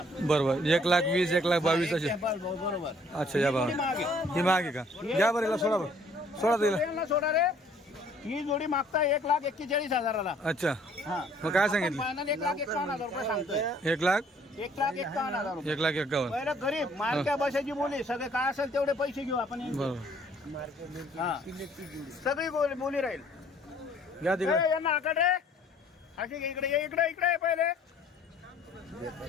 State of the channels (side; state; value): both; normal; correlation 0.59